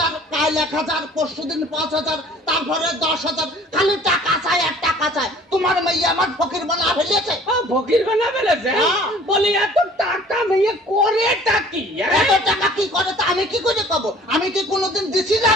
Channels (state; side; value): normal; both; correlation 0.51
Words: কাল 1,000, পরশুদিন 5,000, তারপরে 10,000, খালি টাকা চাই আর টাকা চাই। তোমার মেয়ে আমার ফকির বানা ফেলেছে। ফকির বানা ফেলেছে? বলি এত টাকা মেয়ে করে টাকি? এত টাকা কি করে তা আমি কি করে পাবো? আমি কি কোনোদিন দিছি